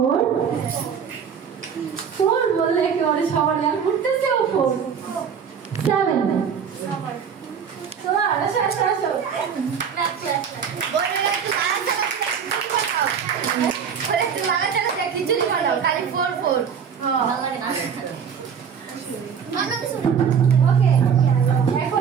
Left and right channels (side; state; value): left; quieter; 7.1 dB